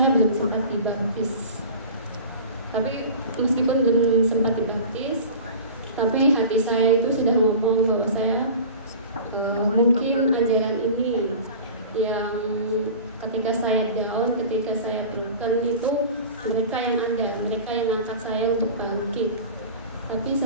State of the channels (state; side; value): inverted; both; correlation -0.37